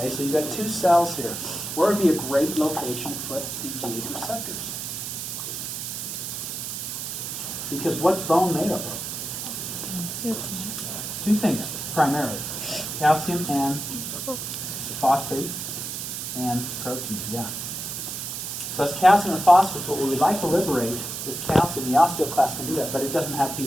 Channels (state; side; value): noise; right; hiss, 5 dB below the sound